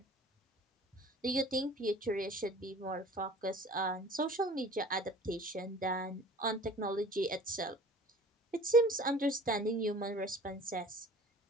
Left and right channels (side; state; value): both; normal; correlation 0.46